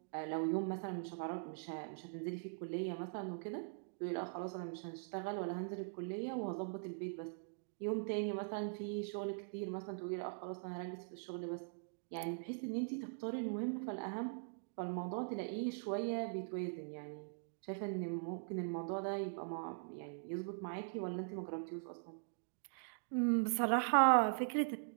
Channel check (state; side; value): silent; left; digital silence